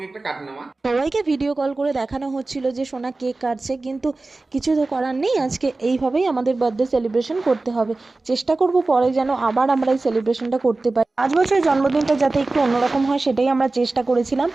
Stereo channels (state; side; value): quieter; left; 3.3 dB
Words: কাট না মা। সবাইকে ভিডিও কল করে দেখানো হচ্ছিল যে সোনা কেক কাটছে, কিন্তু কিছু তো করার নেই। আজকে এইভাবেই আমাদের বার্থডে সেলিব্রেশন করতে হবে। চেষ্টা করব পরে যেন আবার আমরা এই সেলিব্রেশনটা করতে পারি। 5 বছরের জন্মদিনটা যাতে একটু অন্যরকম হয়, সেটাই আমরা চেষ্টা করেছিলাম।